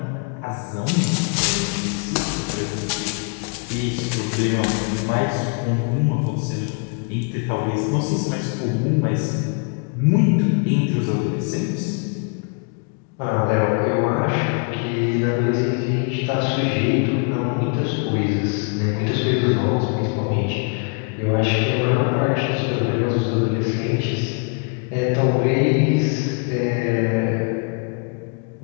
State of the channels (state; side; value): quieter; right; 37.8 dB